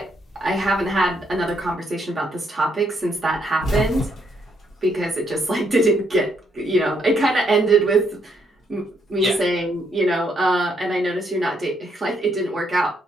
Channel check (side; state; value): both; normal; correlation 0.74